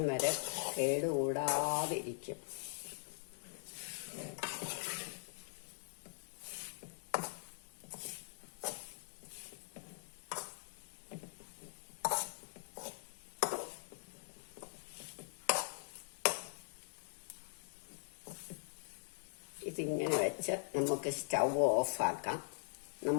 വരെ കേടുകൂടാതിരിക്കും. ഇതിങ്ങനെ വെച്ച് നമുക്ക് സ്റ്റൗ ഓഫാക്കാം.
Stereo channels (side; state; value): right; silent; digital silence